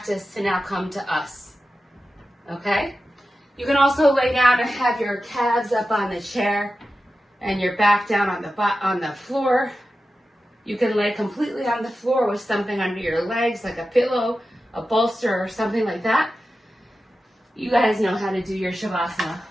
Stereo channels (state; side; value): normal; both; correlation 0.93